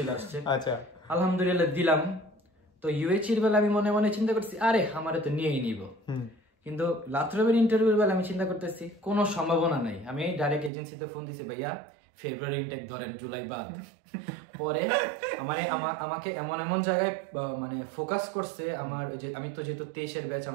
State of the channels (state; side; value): drops out; left; at 10.7 s